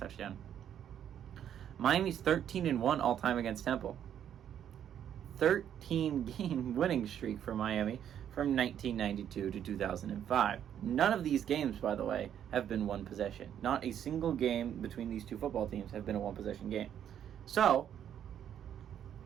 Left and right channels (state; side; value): quieter; left; 9.7 dB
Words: Miami's 13-1 all-time against Temple. 13-game winning streak for Miami from 1992 to 2005. None of these games, by the way, have been one possession. Not a single game between these two football teams have been a one-possession game. So,